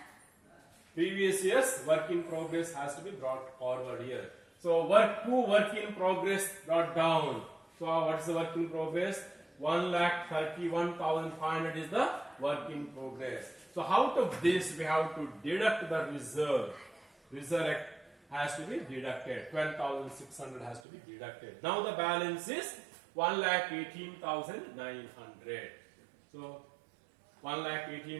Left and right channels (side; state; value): left; drops out; at 20.8 s